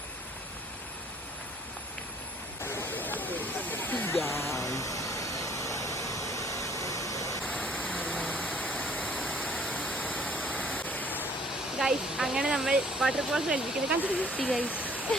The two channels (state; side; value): normal; both; correlation 0.57